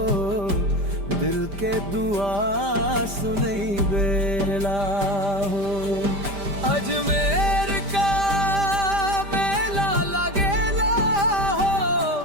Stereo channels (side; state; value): left; late; 5.0 ms